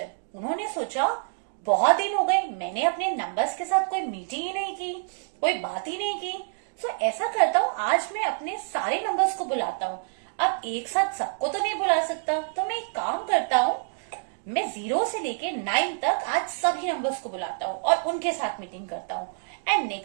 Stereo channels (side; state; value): left; silent; digital silence